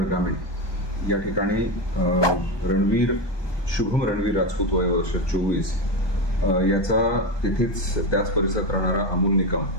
ग्रामीण या ठिकाणी शुभम रणवीर राजपूत वय वर्ष 24 याचा तेथेच त्याच परिसरात राहणारा अमोल निकम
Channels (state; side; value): late; right; 1.2 ms